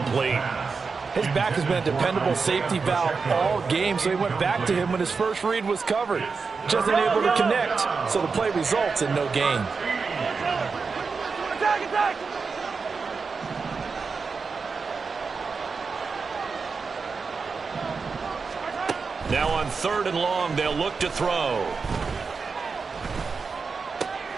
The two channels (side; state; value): left; quieter; 4.9 dB